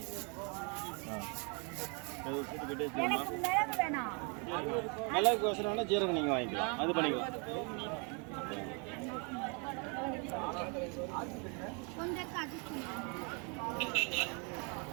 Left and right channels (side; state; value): left; quieter; 34.8 dB